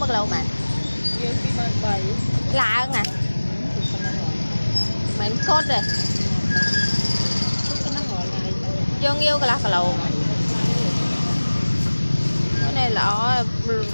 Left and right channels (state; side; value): inverted; both; correlation -1.00